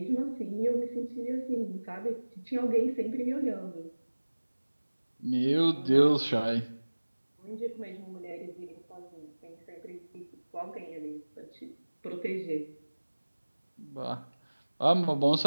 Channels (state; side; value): inverted; both; correlation -1.00